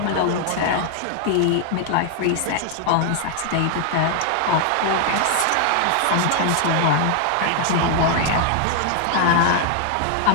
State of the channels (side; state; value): both; different; correlation 0.00